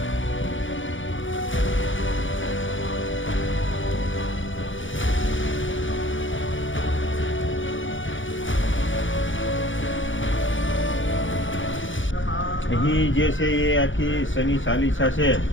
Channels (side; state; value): right; late; 0.56 ms